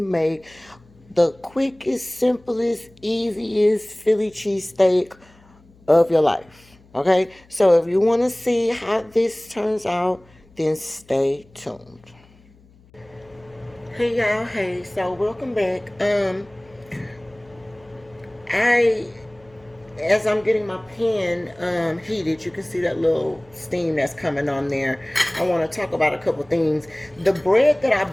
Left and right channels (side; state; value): left; noise; hum, 28 dB below the sound